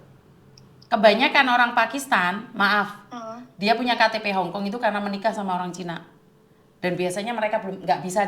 Kebanyakan orang Pakistan, maaf, dia punya KTP Hong Kong itu karena menikah sama orang Cina. Dan biasanya mereka belum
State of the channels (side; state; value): both; identical; correlation 1.00